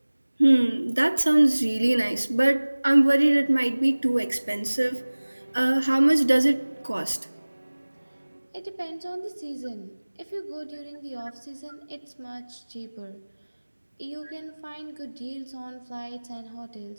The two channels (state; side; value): inverted; both; correlation -1.00